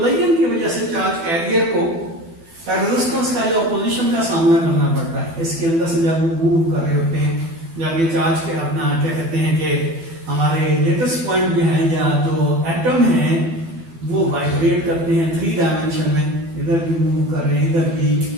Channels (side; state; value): left; late; 12 ms